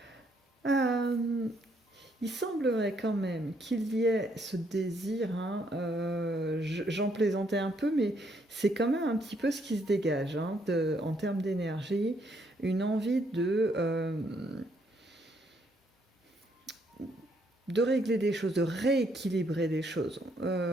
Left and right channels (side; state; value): both; normal; correlation 0.71